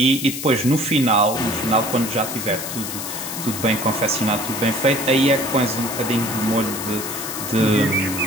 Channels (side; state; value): left; noise; hiss, 7 dB below the sound